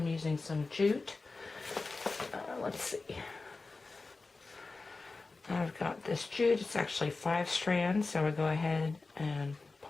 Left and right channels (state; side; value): quieter; right; 3.7 dB